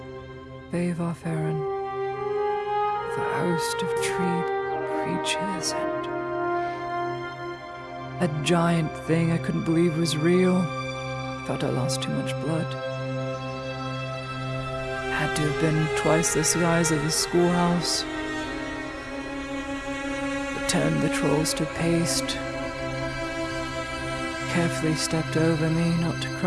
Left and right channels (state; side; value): identical; both; correlation 1.00